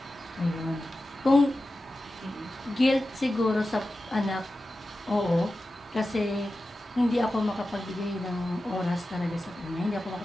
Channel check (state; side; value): normal; both; correlation 0.93